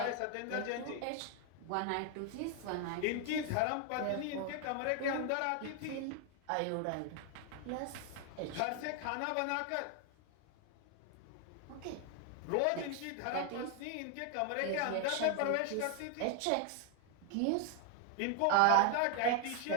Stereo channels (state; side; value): different; both; correlation 0.00